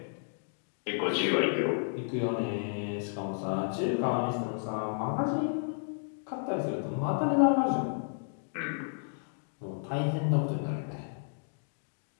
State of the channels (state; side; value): silent; right; digital silence